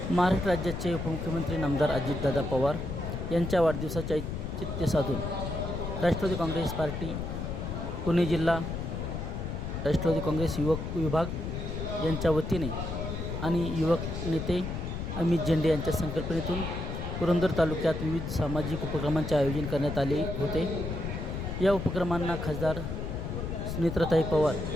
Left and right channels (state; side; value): noise; left; rumble, 4 dB below the sound